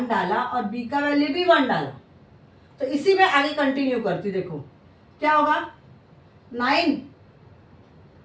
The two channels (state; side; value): identical; both; correlation 1.00